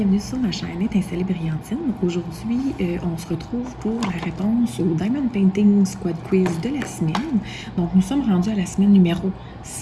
sur ma chaîne Étincelle et Brillantine. Aujourd'hui, on se retrouve pour la réponse au Diamond Painting Squad Quiz de la semaine. Donc, nous sommes rendus à la semaine numéro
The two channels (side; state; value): both; identical; correlation 1.00